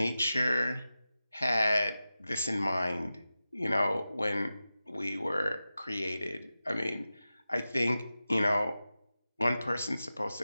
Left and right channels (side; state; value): both; inverted; correlation -0.94